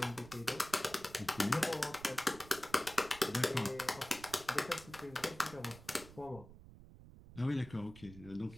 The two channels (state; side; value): noise; right; rumble, 17 dB below the sound